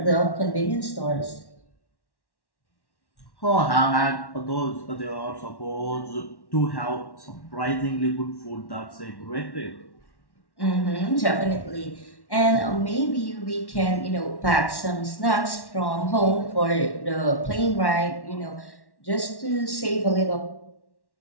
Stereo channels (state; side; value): late; right; 1.1 ms